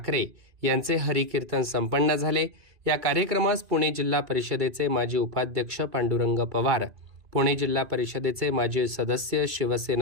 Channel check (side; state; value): left; late; 2.5 ms